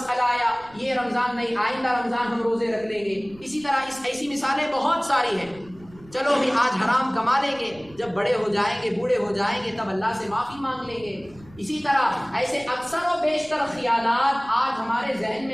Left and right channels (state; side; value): noise; right; rumble, 23 dB below the sound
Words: آیا، یہ رمضان نہیں آئندہ رمضان ہم روزے رکھ لیں گے، اسی طرح ایسی مثالیں بہت ساری ہیں۔ چلو بھی آج حرام کما لیں گے، جب بڑے ہو جائیں گے، بوڑھے ہو جائیں گے، تب اللہ سے معافی مانگ لیں گے۔ اسی طرح ایسے اکثر و بیشتر خیالات آج ہمارے ذہن